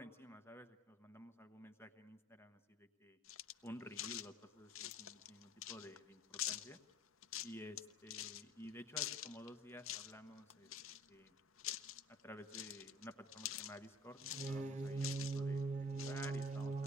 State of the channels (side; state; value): both; normal; correlation 0.51